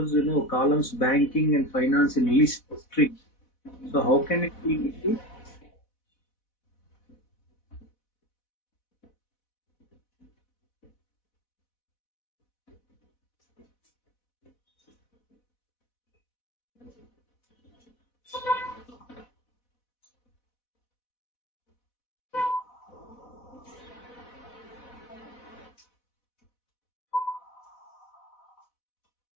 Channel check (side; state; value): right; late; 4.1 ms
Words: columns banking and finance in list string. So how can it be issued?